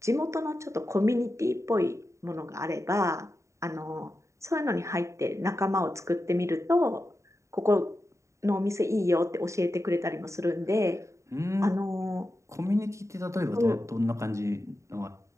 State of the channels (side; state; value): left; late; 0.14 ms